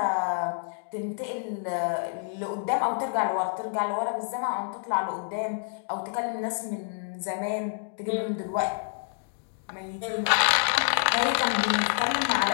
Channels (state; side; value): silent; right; digital silence